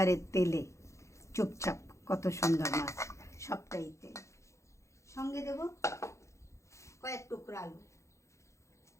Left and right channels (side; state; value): right; late; 0.14 ms